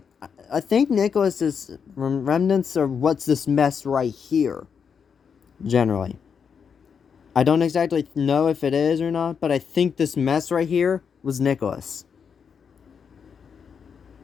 I think Nicholas is remnants of what's this mess right here. Generally. I don't exactly know if it is or not, but I think this mess right here was Nicholas.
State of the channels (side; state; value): right; quieter; 6.6 dB